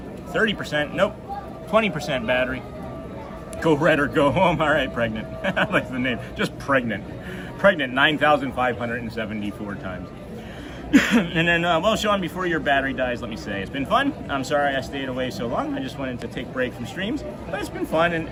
nope, 20% battery. Go red or go home. All right, pregnant. I like the name. Just pregnant. Pregnant 9,574 times. And then, well, Sean, before your battery dies, let me say it's been fun. I'm sorry I stayed away so long. I just wanted to take a break from streams, but it's been fun,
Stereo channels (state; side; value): identical; both; correlation 1.00